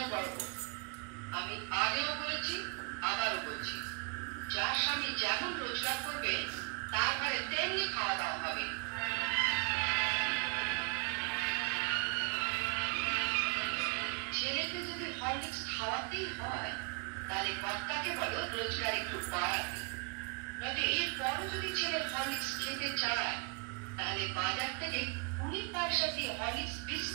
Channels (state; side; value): quieter; left; 31.5 dB